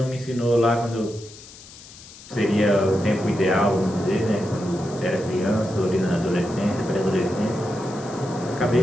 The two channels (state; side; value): noise; left; hiss, 18 dB below the sound